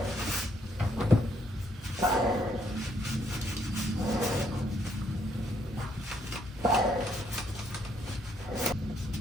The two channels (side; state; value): both; normal; correlation 0.71